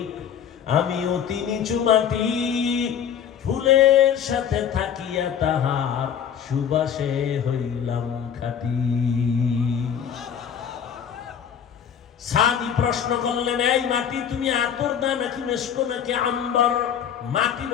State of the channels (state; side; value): quieter; right; 8.5 dB